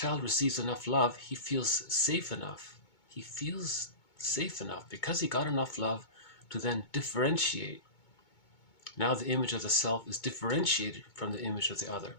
receives enough love, he feels safe enough. He feels safe enough because he got enough love to then differentiate. Now the image of the self is differentiated from the image of the other.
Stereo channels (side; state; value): right; late; 2.2 ms